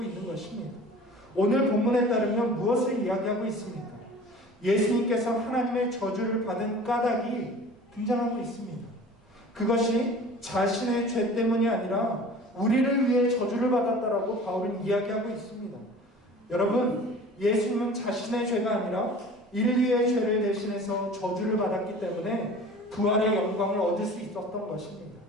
있는 것입니다. 오늘 본문에 따르면 무엇을 이야기하고 있습니까? 예수님께서 하나님의 저주를 받은 까닭이 등장하고 있습니다. 그것이 자신의 죄 때문이 아니라 우리를 위해 저주를 받았다라고 바울은 이야기하고 있습니다. 여러분, 예수님은 자신의 죄가 아니라 인류의 죄를 대신해서 저주를 받았기 때문에 부활의 영광을 얻을 수 있었던 것입니다.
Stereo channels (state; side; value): normal; both; correlation 0.43